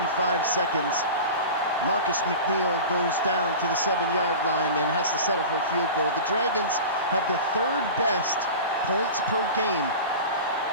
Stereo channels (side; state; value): both; inverted; correlation -0.33